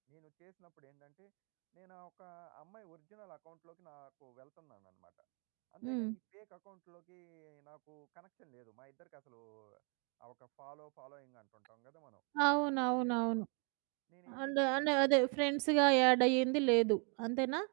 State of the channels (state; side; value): quieter; left; 37.2 dB